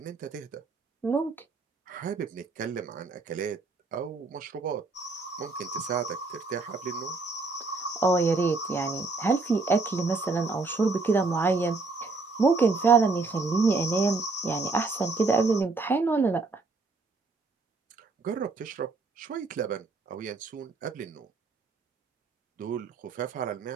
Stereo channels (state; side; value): quieter; left; 3.8 dB